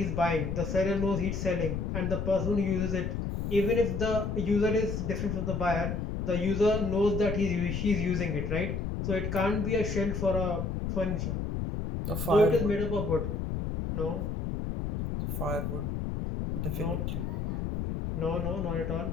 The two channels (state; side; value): noise; left; rumble, 2 dB below the sound